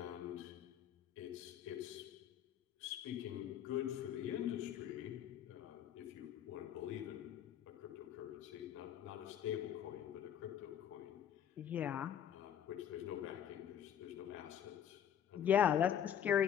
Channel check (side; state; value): right; quieter; 9.6 dB